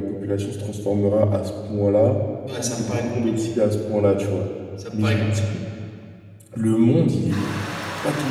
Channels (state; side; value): identical; both; correlation 1.00